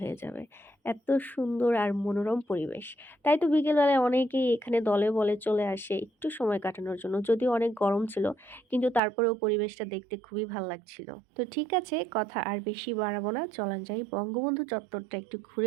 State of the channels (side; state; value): left; drops out; at 9.0 s